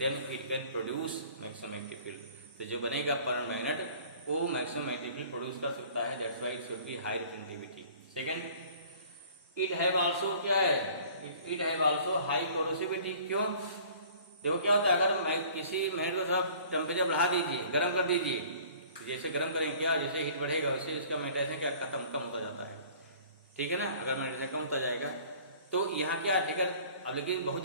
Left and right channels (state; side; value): inverted; both; correlation -0.50